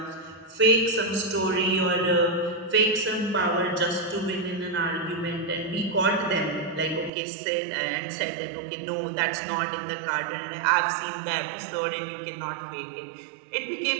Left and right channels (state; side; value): drops out; left; at 7.1 s